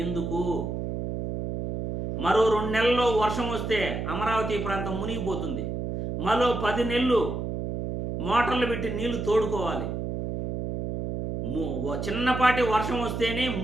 ఎందుకు? మరో 2 నెలల్లో వర్షం వస్తే అమరావతి ప్రాంతం మునిగిపోతుంది. మరో 10 నెలలు మోటార్లు పెట్టి నీళ్లు తోడుకోవాలి. చిన్నపాటి వర్షం వస్తేనే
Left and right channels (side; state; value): right; noise; hum, 4 dB below the sound